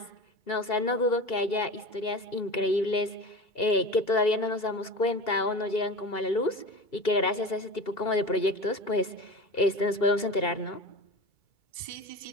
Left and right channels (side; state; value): right; late; 2.8 ms